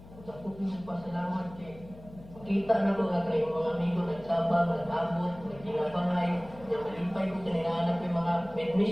Ako yung pasalamat kay makita na ko nga kayo mga amigo nagtabang, nag-abot, nagkinabangay, yung malipay ko kaninahanap yung mga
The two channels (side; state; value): left; noise; hum, 19 dB below the sound